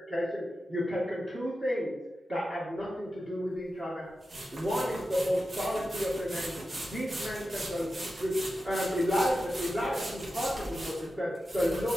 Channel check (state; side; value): normal; both; correlation 0.92